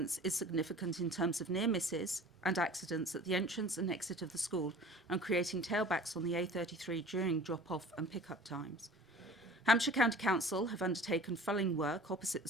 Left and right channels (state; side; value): normal; both; correlation 0.44